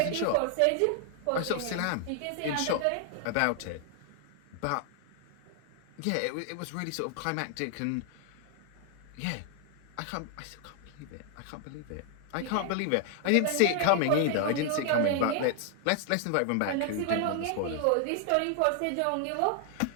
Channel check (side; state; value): both; different; correlation 0.00